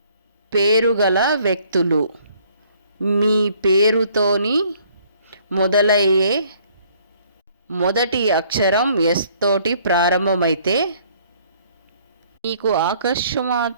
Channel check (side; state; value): both; inverted; correlation -0.61